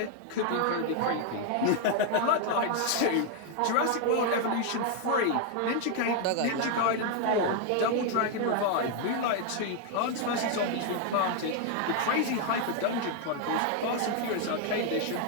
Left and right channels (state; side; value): different; both; correlation 0.00